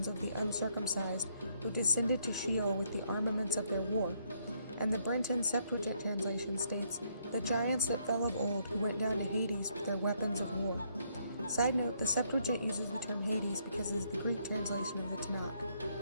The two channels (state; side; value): inverted; both; correlation -0.71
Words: of the uncircumcised, who descended to Sheol with the armaments of their war." And the Brenton Septuagint translation states, "The giants that fell of old, who went down to Hades with their weapons of war." Side note, the Septuagint uses the term Hades because it is the Greek translation of the